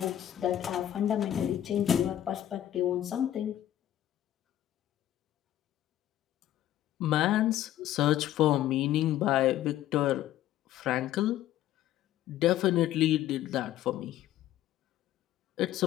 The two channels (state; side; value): quieter; right; 12.5 dB